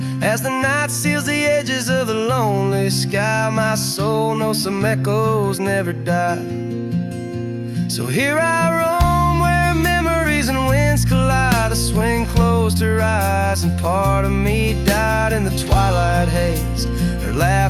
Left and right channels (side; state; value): both; identical; correlation 1.00